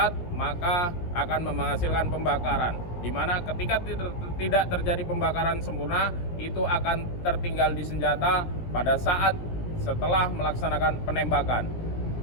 maka akan menghasilkan pembakaran. Di mana ketika tidak terjadi pembakaran sempurna, itu akan tertinggal di senjata pada saat setelah melaksanakan penembakan.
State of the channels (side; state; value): right; late; 17 ms